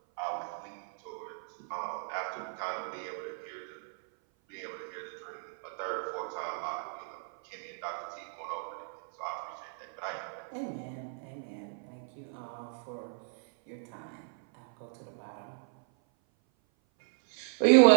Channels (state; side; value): silent; left; 55 dB below the other